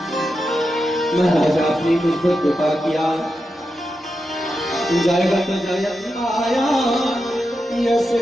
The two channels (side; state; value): both; normal; correlation 0.88